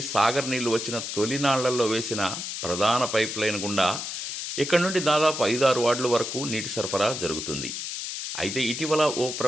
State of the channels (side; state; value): left; noise; hiss, 5 dB below the sound